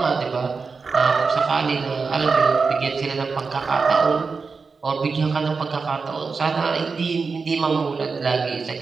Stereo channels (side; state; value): left; quieter; 4.7 dB